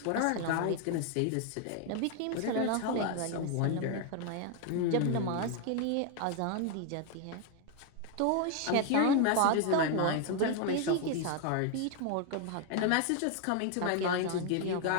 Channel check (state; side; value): different; both; correlation 0.01